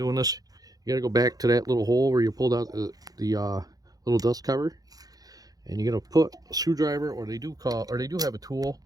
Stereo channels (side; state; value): left; late; 0.18 ms